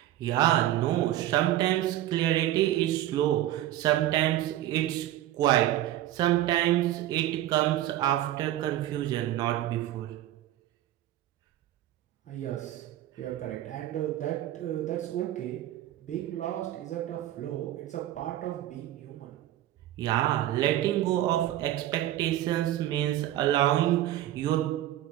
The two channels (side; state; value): left; quieter; 13.7 dB